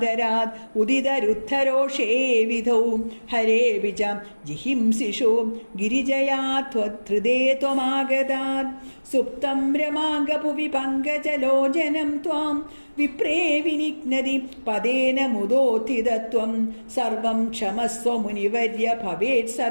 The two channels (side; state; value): both; inverted; correlation -1.00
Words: ഉദിതരുദ്ധരോഷേ വിധൗ ഹരേ വിജ ജിഹിംസിഷു ഗിരിജയാ ത്വധൃതേ ത്വമാഗതാത് സുപ്തം രമാംഗപുവി പങ്കജലോചനം ത്വാം വിപ്രേ വിനിഘ്നതി പദേന മുദോത്ഥിതത്വം സർവം ക്ഷമസ്വ മുനിവർയ ഭവേത്